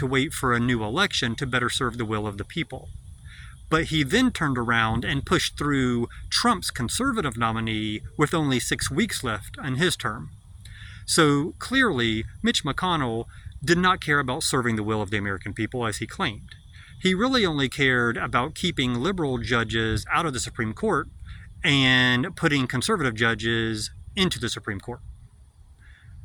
wait for a new election to better serve the will of the people. But he then turned around and pushed through Trump's conservative nominee with only 6 weeks left on his term. So clearly, Mitch McConnell did not care about serving the will of the American people as he claimed. He really only cared about keeping liberal judges out of the Supreme Court and putting conservative judges into the Supreme Court.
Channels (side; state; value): both; identical; correlation 1.00